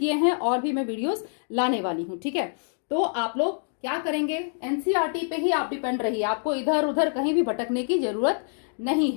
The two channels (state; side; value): silent; right; 58 dB below the other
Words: हैं और भी मैं वीडियोस लाने वाली हूं। ठीक है, तो आप लोग क्या करेंगे, एनसीईआरटी पे ही आप डिपेंड रहिए, आपको इधर उधर कहीं भी भटकने की जरूरत नहीं